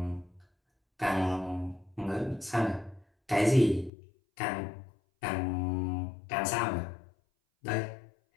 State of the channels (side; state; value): right; drops out; at 3.9 s